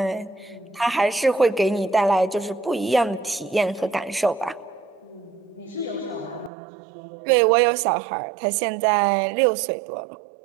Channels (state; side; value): drops out; left; at 6.5 s